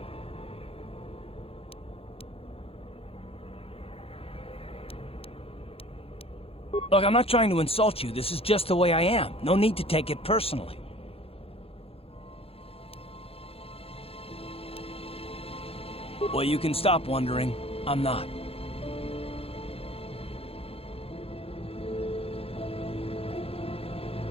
Look, I'm not trying to insult you. This is just the way I am. No need to take it personally. Well, you can stop wondering. I'm not.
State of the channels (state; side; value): late; right; 0.28 ms